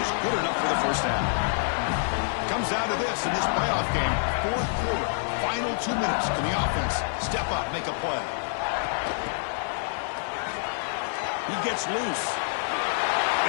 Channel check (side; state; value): right; silent; 60 dB below the other